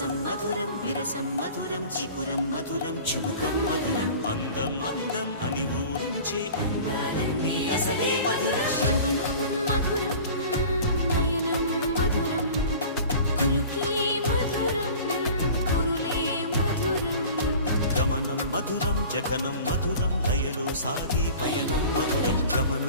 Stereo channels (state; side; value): inverted; both; correlation -0.42